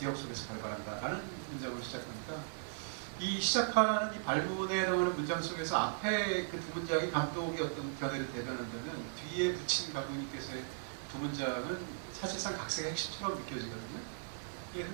속에서 발발한다라는 문장으로 시작합니다. 이 시작하는 이 발문에 나오는 문장 속에서 앞에 그 두 문장이 감독의 어떤 견해를 대변한다면 뒤에 붙인 감독님께서의 두 문장은 사실상 각색의 핵심처럼 느껴지거든요. 예,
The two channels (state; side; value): silent; left; 53 dB below the other